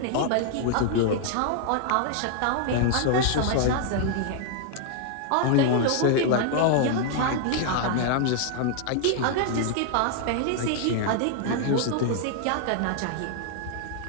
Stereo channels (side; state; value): both; different; correlation 0.00